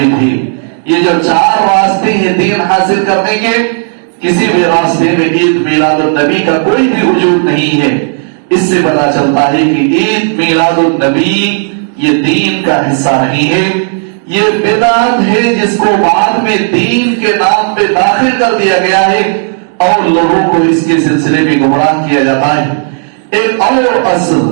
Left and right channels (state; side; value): silent; left; 57 dB below the other